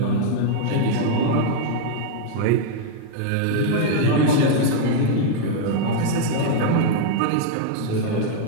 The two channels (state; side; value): different; both; correlation -0.01